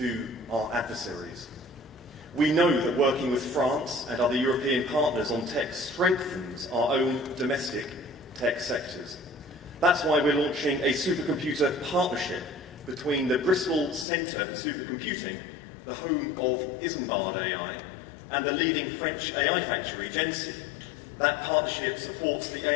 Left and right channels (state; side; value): drops out; right; at 14.1 s